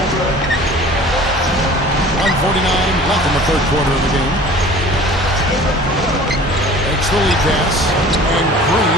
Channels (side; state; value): both; normal; correlation 0.45